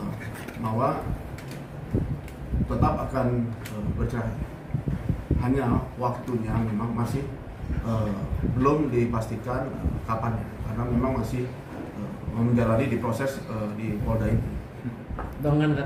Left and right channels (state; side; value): identical; both; correlation 1.00